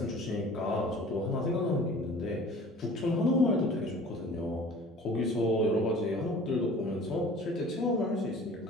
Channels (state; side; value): normal; both; correlation 0.46